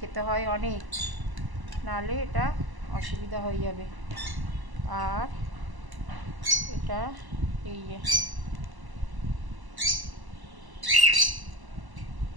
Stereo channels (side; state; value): left; late; 1.0 ms